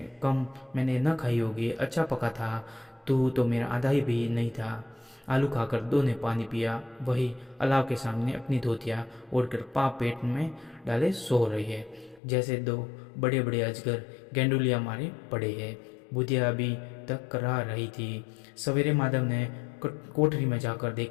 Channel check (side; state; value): right; drops out; at 12.2 s